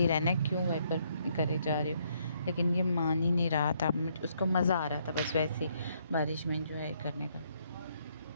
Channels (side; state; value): both; inverted; correlation -0.71